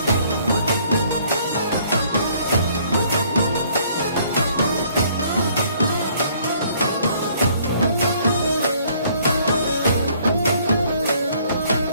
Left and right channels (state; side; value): inverted; both; correlation -0.62